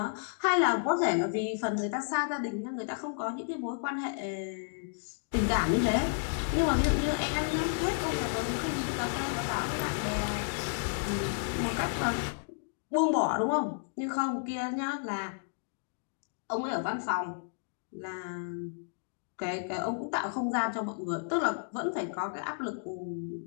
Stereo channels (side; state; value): right; silent; digital silence